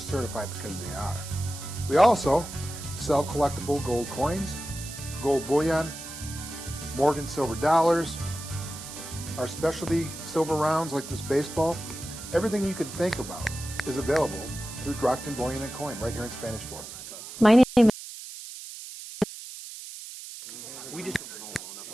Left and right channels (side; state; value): right; noise; hiss, 12 dB below the sound